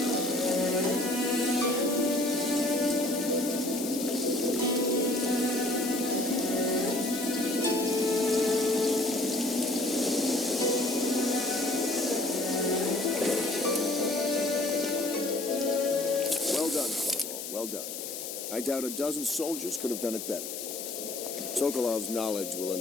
Well done. I doubt a dozen soldiers could have done it better. Sokolov's knowledge will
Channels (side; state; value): left; noise; hiss, 7 dB below the sound